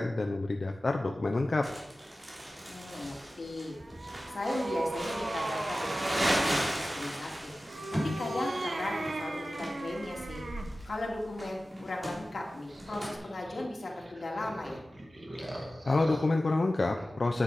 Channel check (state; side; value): normal; both; correlation 0.95